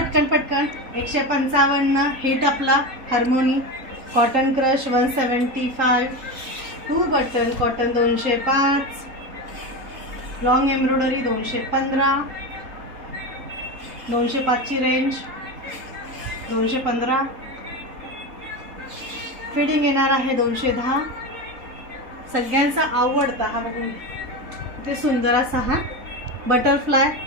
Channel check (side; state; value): left; late; 3.8 ms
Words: पटकन। 155 हिट आपला harmony, cotton crush 175, 2 button cotton 205, long embroidery 215, 205 ची रेंज 215, फिटिंग येणार आहे 210। सगळ्यांचा आवडता हा बघून किती सुंदर असा हा बटरफ्लाय